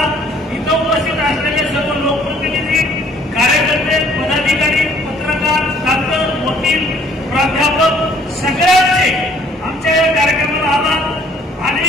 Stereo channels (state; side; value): normal; both; correlation 0.59